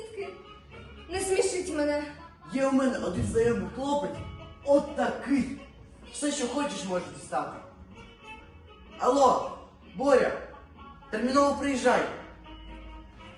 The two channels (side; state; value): both; identical; correlation 1.00